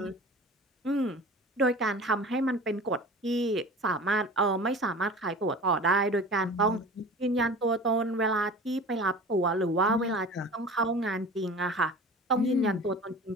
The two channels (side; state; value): both; normal; correlation 0.39